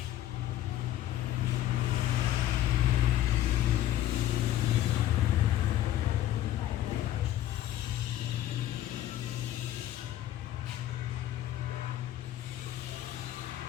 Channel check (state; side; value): quieter; right; 13.0 dB